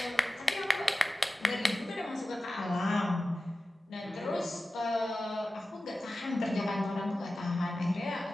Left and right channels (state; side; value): normal; both; correlation 0.95